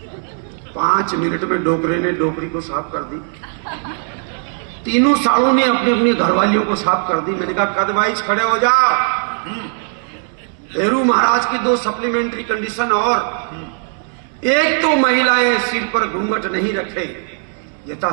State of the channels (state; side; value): silent; left; 56 dB below the other